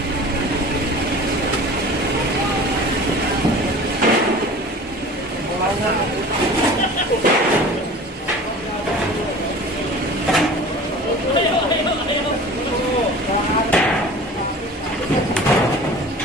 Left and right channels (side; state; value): both; normal; correlation 0.41